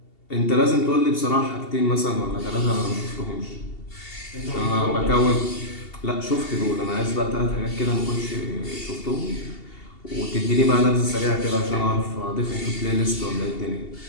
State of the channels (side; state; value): right; late; 2.7 ms